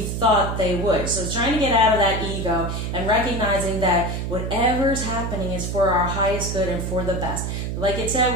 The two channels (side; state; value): right; noise; hum, 3 dB below the sound